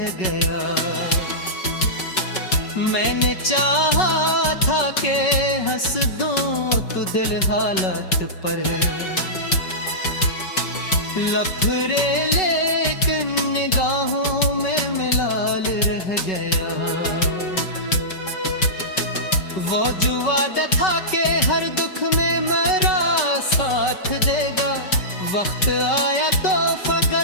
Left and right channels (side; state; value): right; late; 5.3 ms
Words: गया। मैंने चाहा था कि हंस दूं तो दिल हालत पर लफड़े, लेकिन निगाहों में मिलाल रह गया। वो जो वादा था कि हर दुख में मेरा साथ देगा, वक्त आया तो